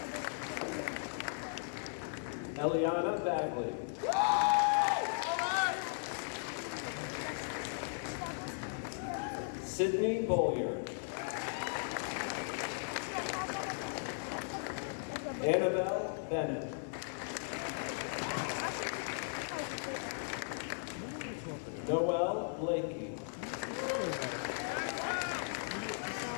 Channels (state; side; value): silent; right; digital silence